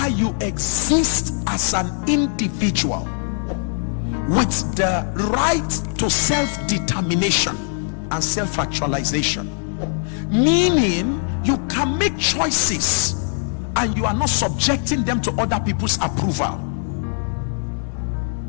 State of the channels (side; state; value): right; silent; 60 dB below the other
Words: you exist as an individual with the right to self-determination and self-actualization, meaning you can make choices and you are not subjecting them to other people's approval,